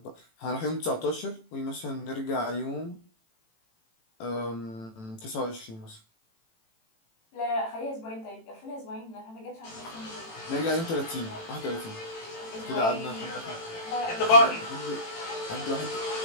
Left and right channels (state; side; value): late; right; 18 ms